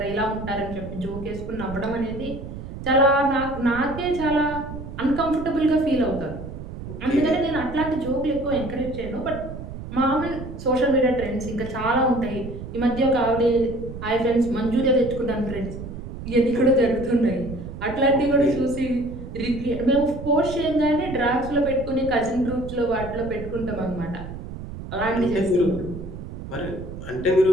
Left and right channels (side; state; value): right; noise; rumble, 10 dB below the sound